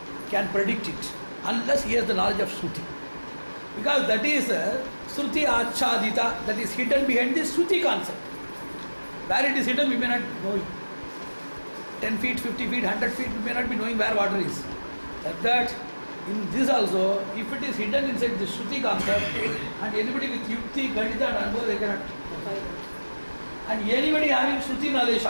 can predict it unless he has the knowledge of Shruti. Because that is Shruti Achadita, that is hidden behind the Shruti concept. Where it is hidden, we may not know it. 10 feet, 50 feet, 100 feet, we may not be knowing where water is. Like that, in this also, if it is hidden inside the Shruti concept, and anybody with Yukti, Ganita and Anubhava, they cannot. And anybody having Shruti knowledge,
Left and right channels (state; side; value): inverted; both; correlation -1.00